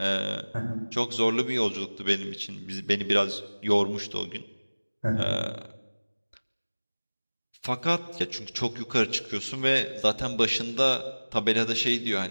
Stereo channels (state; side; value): inverted; both; correlation -1.00